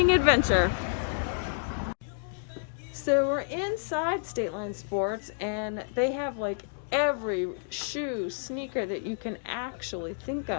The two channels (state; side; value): silent; right; digital silence